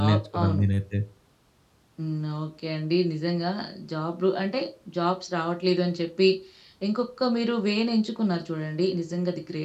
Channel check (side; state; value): both; identical; correlation 1.00